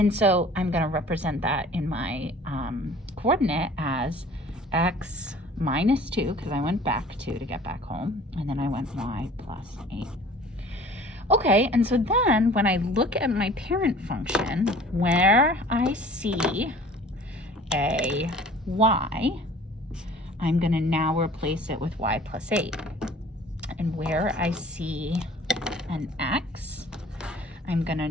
so I'm going to represent that in my coordinate as x minus 2, because I went back 2 to get back home, and then I went y plus 8. Okay, and so then when I look at my parent function, where I see a y, I'm going to now replace it with y plus 8. And where I see an x, I'm going to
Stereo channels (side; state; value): both; normal; correlation 0.48